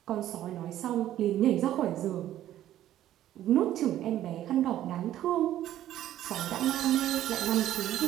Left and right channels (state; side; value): quieter; left; 12.6 dB